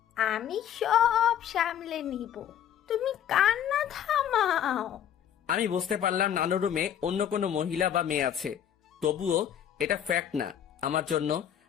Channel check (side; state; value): right; quieter; 9.8 dB